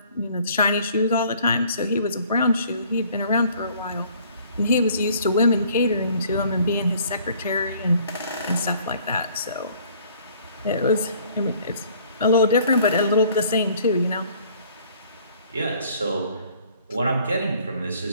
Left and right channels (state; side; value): inverted; both; correlation -0.57